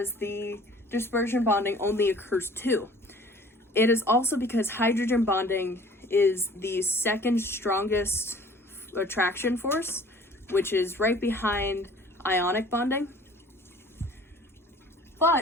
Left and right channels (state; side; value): normal; both; correlation 0.50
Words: the dispersion bonding only occurs 2. It is also because hydrogen bonding is the second strongest attraction force, which is right behind ionic bonding.